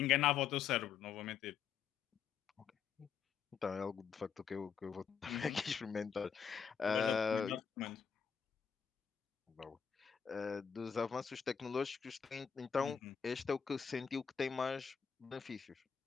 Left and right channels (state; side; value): quieter; right; 7.1 dB